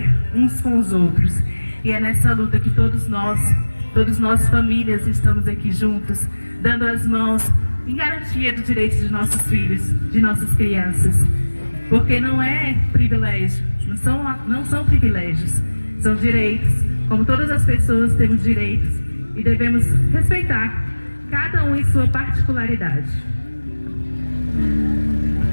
uns com os outros. E é nessa luta que todos nós famílias, estamos aqui juntos, dando as mãos em garantia do direito de nossos filhos, de nossas crianças. Porque não é privilégio, não são privilégios, são direitos. Como todas as pessoas temos direitos e devemos respeitar cada um em sua particularidade.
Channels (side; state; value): both; inverted; correlation -1.00